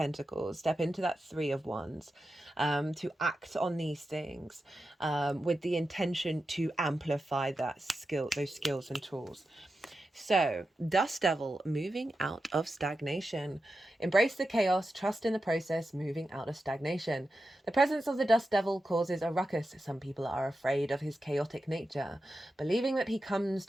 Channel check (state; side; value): normal; both; correlation 0.90